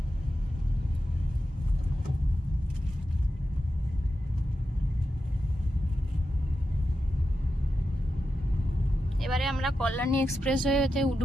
এবারে আমরা কল্যাণী এক্সপ্রেসওয়েতে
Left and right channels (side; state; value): both; normal; correlation 0.90